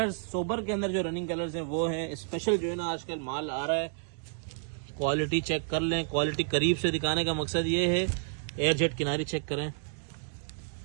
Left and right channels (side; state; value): left; silent; digital silence